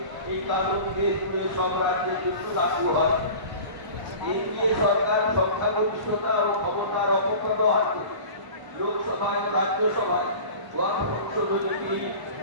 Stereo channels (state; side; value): late; left; 1.0 ms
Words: এই কানুন দেশ জুড়ে সব রাজ্যে লাগু হয়। এনডিএ সরকার সংখ্যাগরিষ্ঠতা ও ক্ষমতার অপব্যবহার করে লোকসভায় ও রাজ্যসভায় ওয়াকফ সংশোধনী বিল